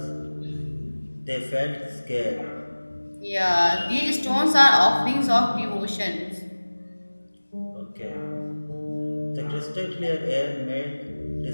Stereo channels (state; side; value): inverted; both; correlation -1.00